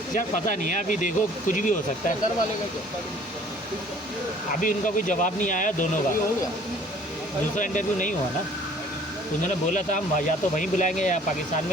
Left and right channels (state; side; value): normal; both; correlation 0.54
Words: यार पता नहीं है, अभी देखो कुछ भी हो सकता है। घर वाले का क्या अभी उनका कोई जवाब नहीं आया दोनों का, हो गया? दूसरा इंटरव्यू नहीं हुआ ना, उन्होंने बोला था हम या तो वहीं बुलाएंगे या पाकिस्तान